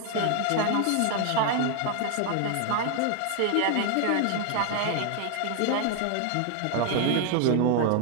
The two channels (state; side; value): different; both; correlation 0.00